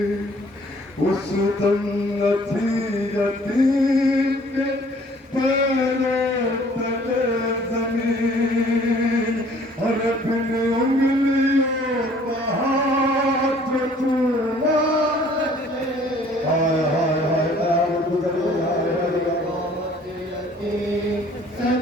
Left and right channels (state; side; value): normal; both; correlation 0.56